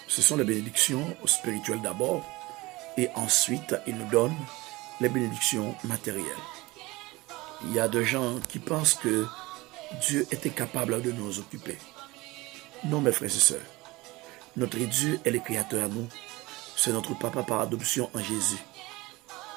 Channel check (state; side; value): quieter; left; 21.4 dB